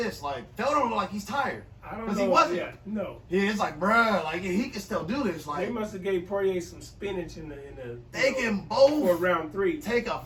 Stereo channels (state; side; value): identical; both; correlation 1.00